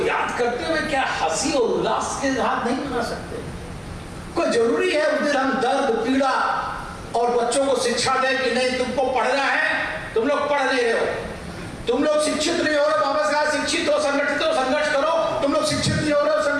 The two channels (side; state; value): both; identical; correlation 1.00